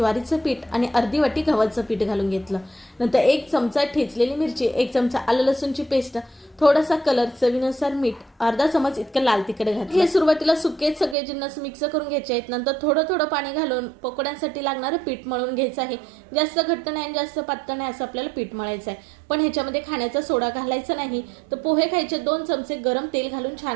पीठ आणि अर्धी वाटी गव्हाचं पीठ घालून घेतलं. नंतर 1 चमचा ठेचलेली मिरची, 1 चमचा आलं लसूणची पेस्ट, थोडासा कलर, चवीनुसार मीठ, अर्धा चमच इतकं लाल तिखट घातलं. हे सुरुवातीला सुकेच सगळे जिन्नस मिक्स करून घ्यायचे आहेत. नंतर थोडं थोडं पाणी घालून पकोड्यांसाठी लागणारं पीठ मळून घ्यायचं आहे. जास्त घट्ट नाही आणि जास्त पातळ नाही असं आपल्याला पीठ मळायचं आहे. पण ह्याच्यामध्ये खाण्याचा सोडा घालायचा नाही. तर पोहे खायचे 2 चमचे गरम तेल घालून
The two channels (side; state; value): left; drops out; at 11.2 s